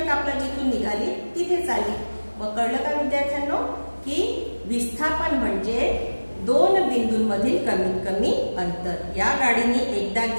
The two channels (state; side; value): inverted; both; correlation -1.00